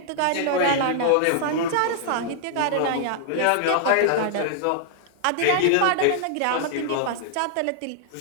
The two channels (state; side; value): different; both; correlation -0.01